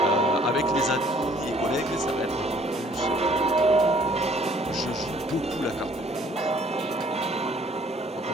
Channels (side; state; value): both; normal; correlation 0.59